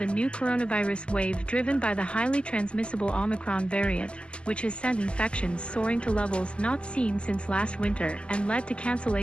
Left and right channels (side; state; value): right; late; 0.052 ms